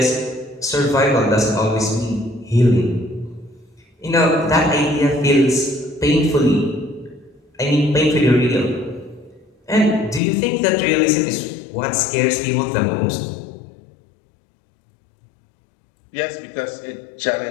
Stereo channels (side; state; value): right; drops out; at 10.2 s